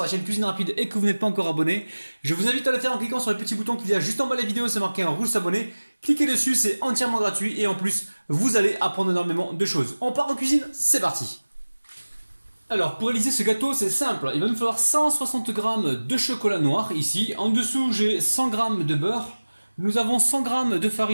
chaîne Cuisine Rapide et que vous n'êtes pas encore abonné, je vous invite à le faire en cliquant sur le petit bouton qu'il y a juste en bas de la vidéo. C'est marqué en rouge s'abonner. Cliquez dessus, c'est entièrement gratuit et en plus, vous allez apprendre énormément de choses. On part en cuisine, c'est parti. Alors, pour réaliser ce gâteau, c'est simple. Il va nous falloir 160 g de chocolat noir ici. En dessous, j'ai 100 g de beurre. Nous avons 100 g de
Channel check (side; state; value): both; inverted; correlation -1.00